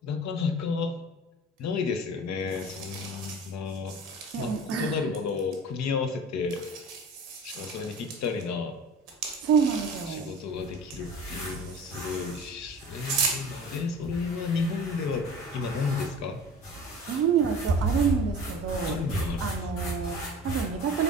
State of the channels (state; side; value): normal; both; correlation 0.39